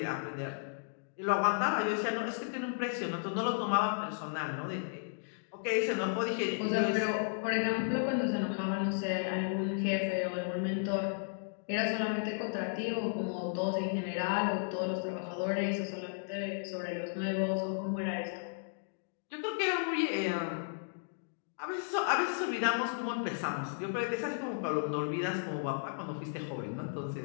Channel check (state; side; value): silent; right; digital silence